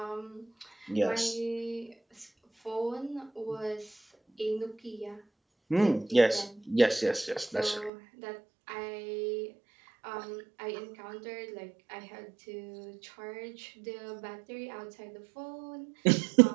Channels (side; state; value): left; drops out; at 7.9 s